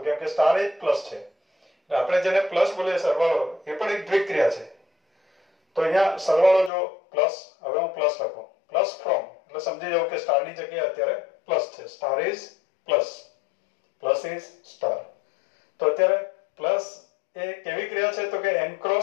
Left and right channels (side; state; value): right; drops out; at 6.7 s